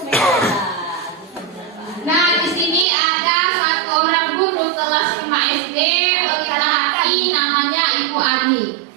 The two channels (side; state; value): left; drops out; at 2.9 s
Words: Nah, di sini ada satu orang guru kelas 5 SD pelita hati namanya Ibu Ani.